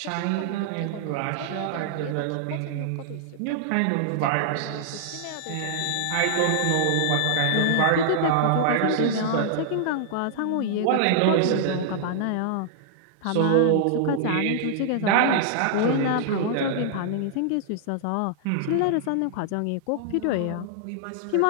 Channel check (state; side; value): different; both; correlation -0.01